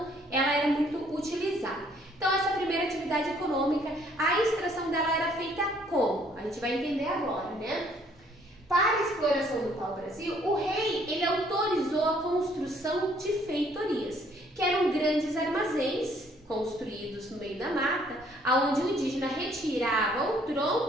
ela era muito utilizada. Então, essa primeira atividade econômica, a extração dela era feita como? A gente vai entender agora, né? Para a exploração do pau-brasil, o rei ele autorizou a construção de feitorias, que eram grandes armazéns construídos no meio da mata, onde o indígena retirava o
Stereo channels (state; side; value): normal; both; correlation 0.63